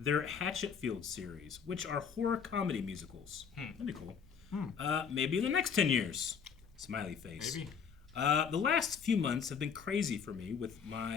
Hatchetfield series, which are horror comedy musicals. That'd be cool. Maybe in the next 10 years. Smiley face. Maybe. The last few months have been crazy for me with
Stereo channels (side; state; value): right; quieter; 6.8 dB